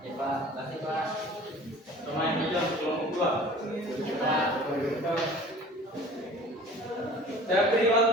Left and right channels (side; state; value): both; normal; correlation 0.45